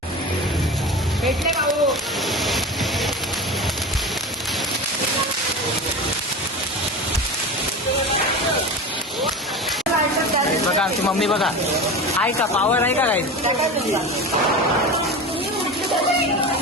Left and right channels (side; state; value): both; normal; correlation 0.29